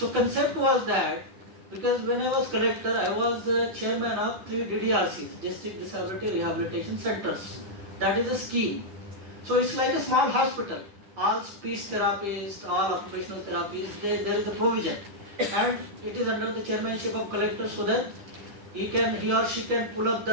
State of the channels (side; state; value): left; late; 9.7 ms